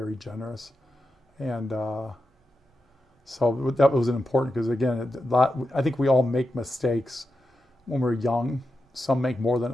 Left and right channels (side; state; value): both; normal; correlation 0.89